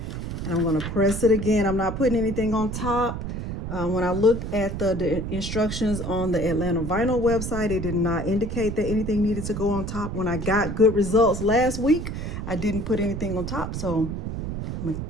and I'm going to press it again. I'm not putting anything on top. When I looked at the instructions on the Atlanta Vinyl website, it did not indicate that anything needed to go on top. When I got good results last week, I didn't put anything on top. So I'm going to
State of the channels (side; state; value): right; noise; rumble, 5 dB below the sound